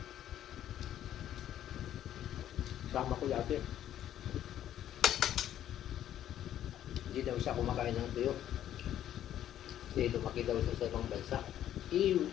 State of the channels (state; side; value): quieter; right; 11.4 dB